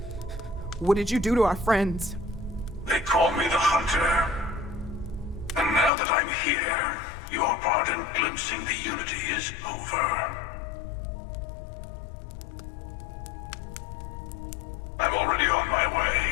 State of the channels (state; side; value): drops out; right; at 5.9 s